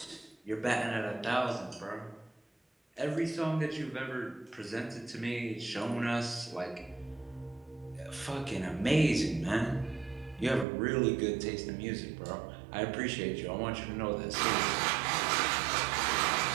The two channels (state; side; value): drops out; left; at 10.7 s